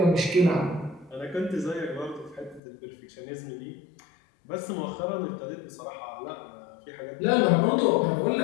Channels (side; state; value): right; drops out; at 2.6 s